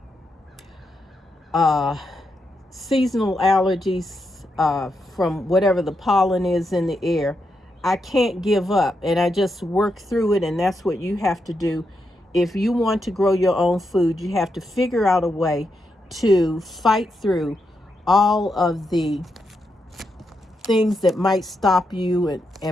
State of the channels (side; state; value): both; normal; correlation 0.83